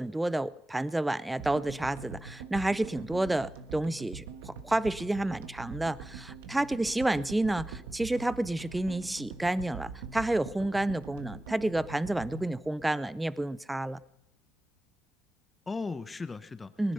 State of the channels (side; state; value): both; normal; correlation 0.95